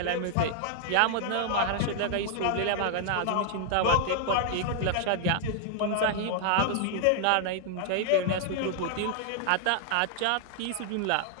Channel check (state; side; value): different; both; correlation 0.00